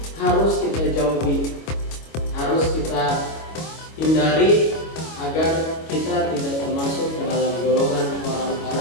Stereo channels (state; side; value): late; right; 25 ms